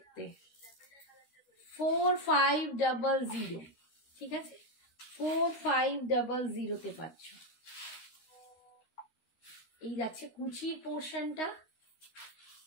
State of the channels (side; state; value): right; late; 13 ms